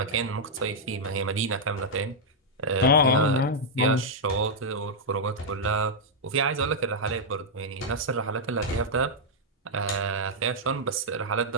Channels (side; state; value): both; normal; correlation -0.05